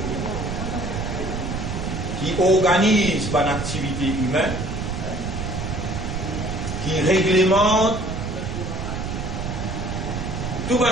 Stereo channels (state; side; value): noise; right; rumble, 4 dB below the sound